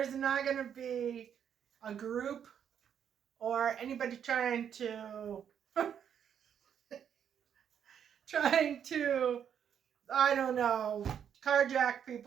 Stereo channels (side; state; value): left; quieter; 8.5 dB